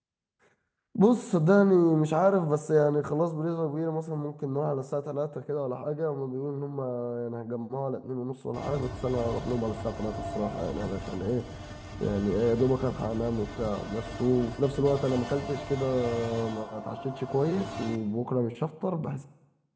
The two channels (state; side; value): identical; both; correlation 1.00